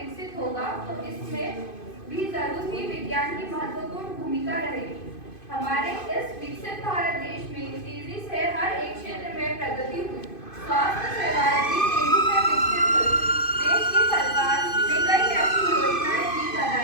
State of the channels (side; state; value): right; late; 2.5 ms